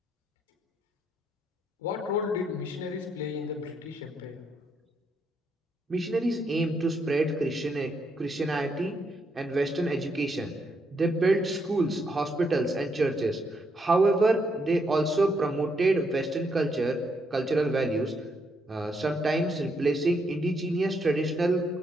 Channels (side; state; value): both; normal; correlation 0.77